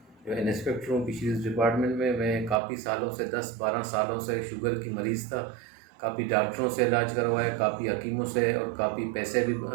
جو انسپیکٹر ہوں فشریز ڈپارٹمنٹ میں۔ میں کافی سالوں سے 10-12 سالوں سے شوگر کی مریض تھا، کافی ڈاکٹروں سے علاج کروایا، کافی حکیموں سے، اور کافی پیسے بھی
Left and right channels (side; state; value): left; drops out; at 2.6 s